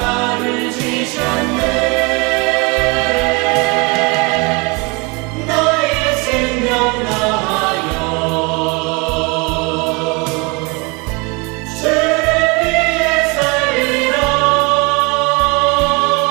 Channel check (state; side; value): quieter; left; 28.6 dB